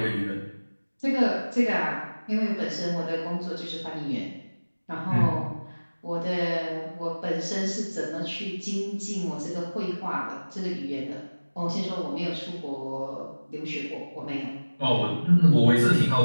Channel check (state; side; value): inverted; both; correlation -1.00